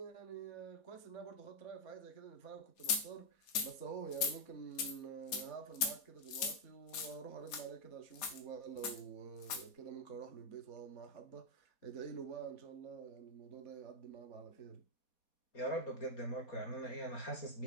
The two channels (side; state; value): right; late; 4.2 ms